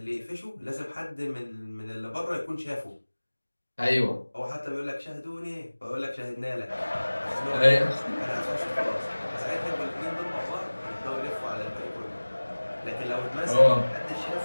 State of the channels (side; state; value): both; inverted; correlation -1.00